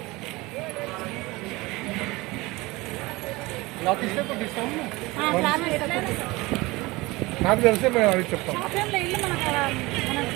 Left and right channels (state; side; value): quieter; left; 22.0 dB